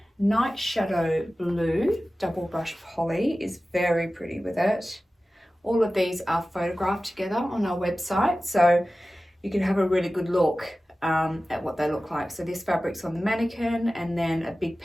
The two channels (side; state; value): both; normal; correlation 0.96